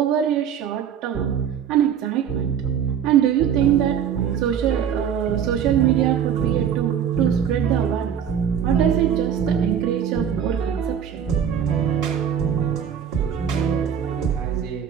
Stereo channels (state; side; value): quieter; left; 8.5 dB